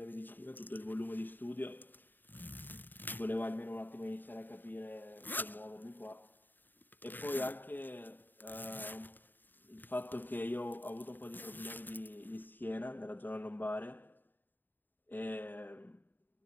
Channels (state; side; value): late; right; 0.091 ms